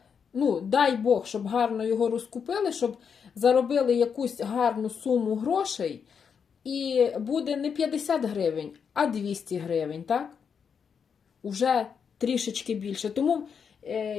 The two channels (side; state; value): right; quieter; 6.7 dB